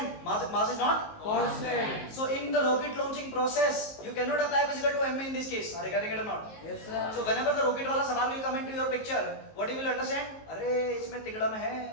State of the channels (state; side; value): late; right; 19 ms